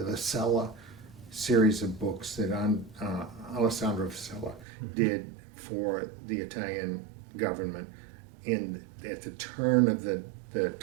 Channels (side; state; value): left; drops out; at 4.7 s